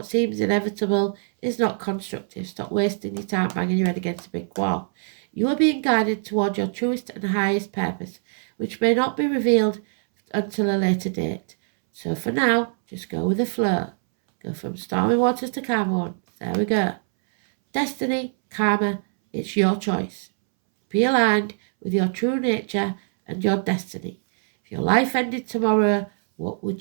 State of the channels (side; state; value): left; silent; 63 dB below the other